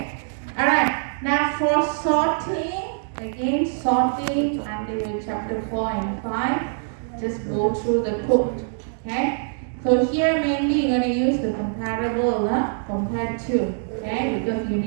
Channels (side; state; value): left; silent; digital silence